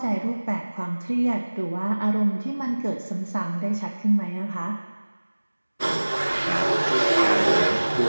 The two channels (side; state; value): both; inverted; correlation -1.00